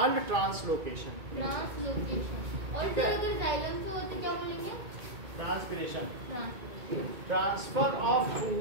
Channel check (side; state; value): left; late; 2.2 ms